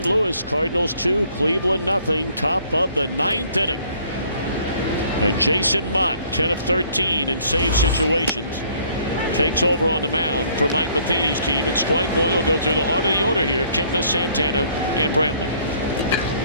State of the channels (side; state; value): both; inverted; correlation -0.61